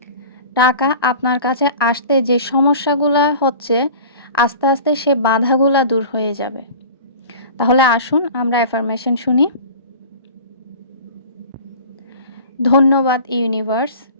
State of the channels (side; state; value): both; inverted; correlation -0.40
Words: টাকা আপনার কাছে আসতে যে সমস্যাগুলা হচ্ছে, আস্তে, আস্তে সে বাধাগুলা দূর হয়ে যাবে। তাহলে আসুন আমরা অ্যাফার্মেশন শুনি। ধন্যবাদ ইউনিভার্স,